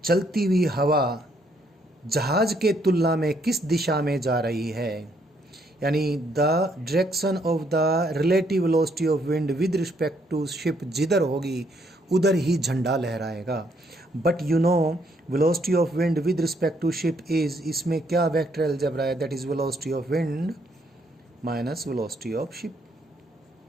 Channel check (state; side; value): normal; both; correlation 0.71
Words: चलती हुई हवा जहाज़ के तुलना में किस दिशा में जा रही है, यानी the direction of the relative velocity of wind with respect to ship जिधर होगी उधर ही झंडा लहराएगा। But you know velocity of wind with respect to ship is, इसमें क्या वेक्टर अलजेब्रा है, that is velocity of wind minus velocity of ship.